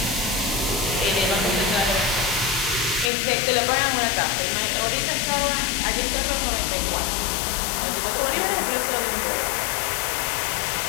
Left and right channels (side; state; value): right; drops out; at 3.1 s